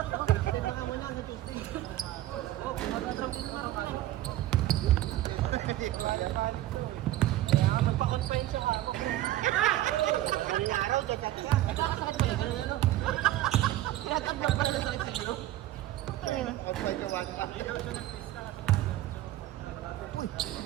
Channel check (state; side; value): quieter; left; 14.7 dB